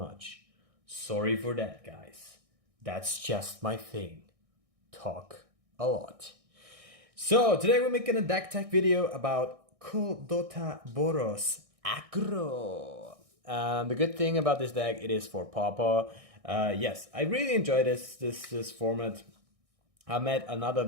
Sorry for that, guys. That's just my thing. Talk a lot. So today we're making a deck tech video about Kuldotha Boros AGGRO. The good thing about this deck, it is for PAUPER. Yes, I really enjoy this format. I made another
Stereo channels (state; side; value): late; left; 1.6 ms